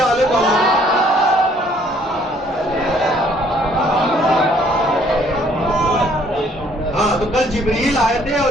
والے محمد. ہاں تو کل جبریل آئے تھے اور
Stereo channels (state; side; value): normal; both; correlation 0.62